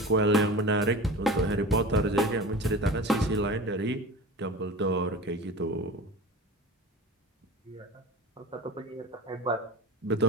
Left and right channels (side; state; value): both; normal; correlation 0.34